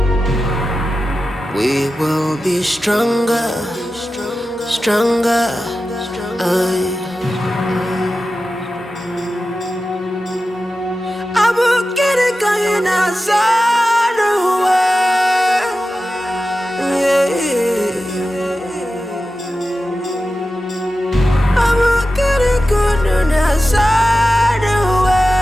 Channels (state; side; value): normal; both; correlation 0.93